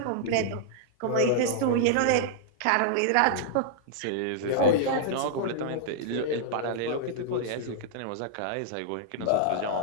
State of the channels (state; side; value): different; both; correlation -0.02